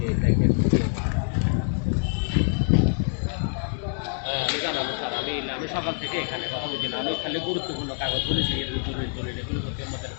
আমি জানাবো স্যার আমি সকাল থেকে এখানে কথা বলছি না আমি খালি গুরুত্বপূর্ণ কাগজ বলেছি দলিল এগুলো করতে আমাদের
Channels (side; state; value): right; silent; 56 dB below the other